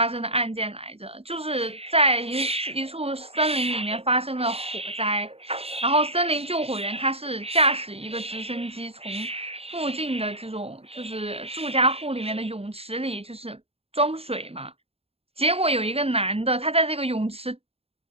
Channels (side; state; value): left; late; 0.29 ms